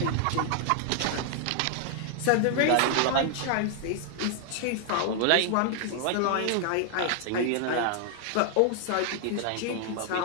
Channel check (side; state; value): both; different; correlation 0.00